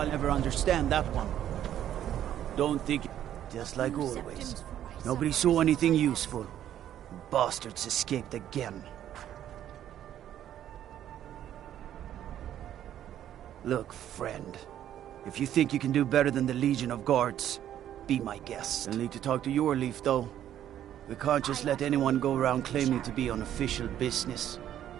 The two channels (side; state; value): left; quieter; 11.1 dB